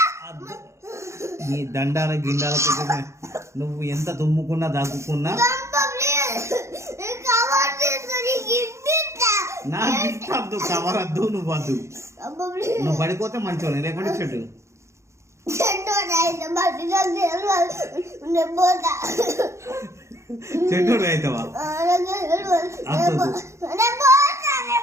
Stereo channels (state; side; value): late; left; 0.14 ms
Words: నీ దండాల గిండాల నువ్వు ఎంత తుమ్ముకున్నా దగ్గుకున్నా నా గిఫ్ట్ వద్దు, కవర్ వద్దు, నువ్వు వద్దు. నువ్వు పడిపోతే మంచోని లేకుంటే చెట్టు చెట్టు అవుతావా?